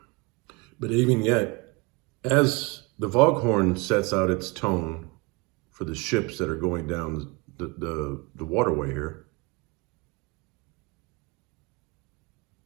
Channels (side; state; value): left; quieter; 27.0 dB